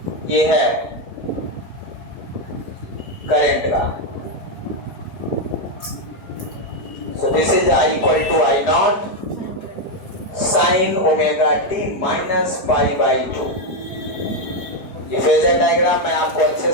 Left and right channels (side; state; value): right; late; 4.8 ms